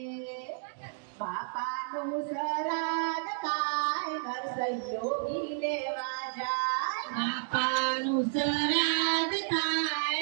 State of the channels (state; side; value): silent; left; digital silence